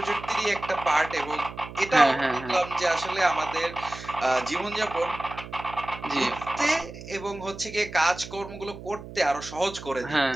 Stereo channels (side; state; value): right; noise; hum, 13 dB below the sound